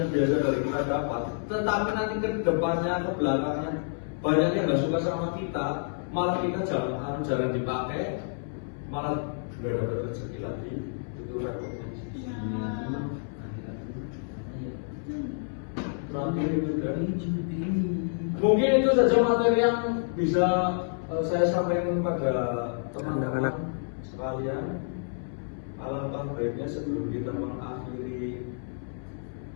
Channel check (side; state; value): right; silent; 59 dB below the other